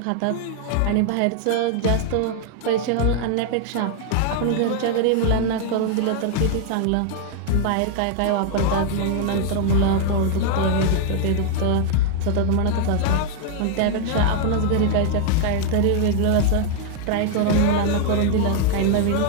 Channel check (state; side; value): different; both; correlation 0.00